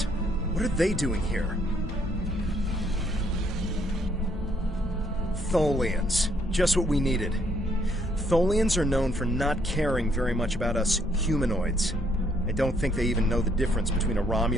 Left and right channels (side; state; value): both; normal; correlation 0.69